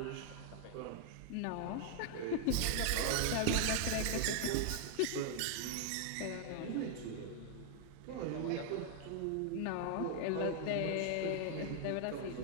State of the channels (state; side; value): different; both; correlation 0.00